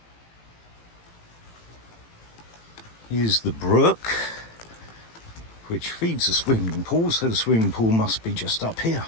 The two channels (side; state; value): right; late; 18 ms